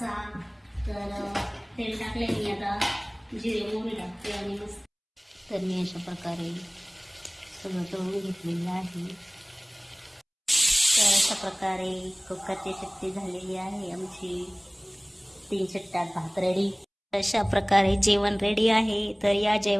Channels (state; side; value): identical; both; correlation 1.00